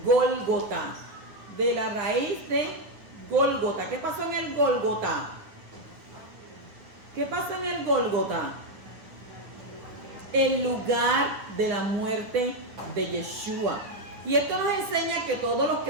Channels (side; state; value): left; late; 9.5 ms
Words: Gólgota. De la raíz de Gólgota. ¿Qué pasó en el Gólgota? ¿Qué pasa en el Gólgota? El lugar de la muerte de Yeshua. Y esto nos enseña que todos los